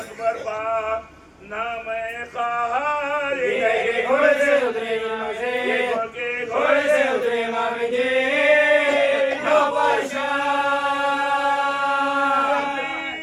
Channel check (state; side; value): identical; both; correlation 1.00